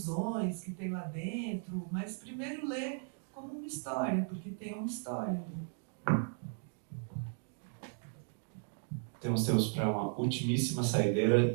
que tem lá dentro, mas primeiro lê como uma história, porque tem uma história. Temos tempo para uma ultimíssima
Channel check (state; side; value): silent; left; 54 dB below the other